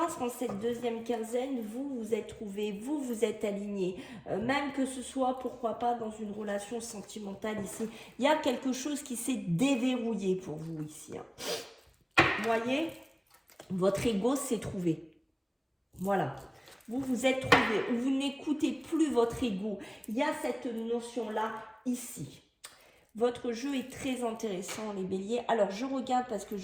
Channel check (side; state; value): both; identical; correlation 1.00